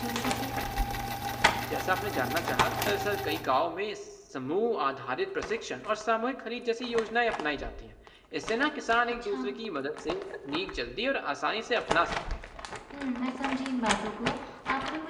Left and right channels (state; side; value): identical; both; correlation 1.00